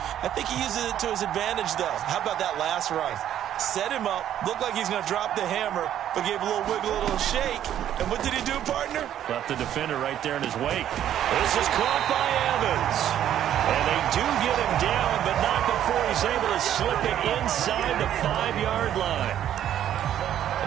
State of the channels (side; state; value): left; quieter; 10.9 dB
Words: I think he uses it to his advantage, though. How about that last run? Set him up, looked like he's going to drop the hammer, but gave a little wiggle, a little shake. And what did he do, partner? Left the defender right there in his wake. This is caught by Evans. And they do get him down, but not before he's able to slip it inside the 5-yard line.